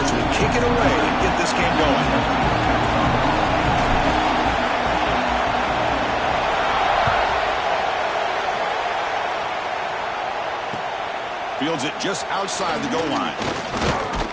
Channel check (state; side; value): identical; both; correlation 1.00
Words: will kick it away and get this game going. Fields it just outside the goal line.